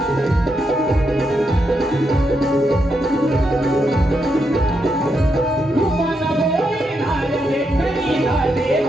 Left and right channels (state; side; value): normal; both; correlation 0.82